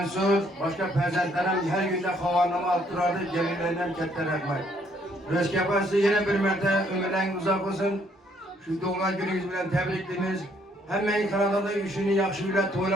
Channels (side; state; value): both; normal; correlation 0.67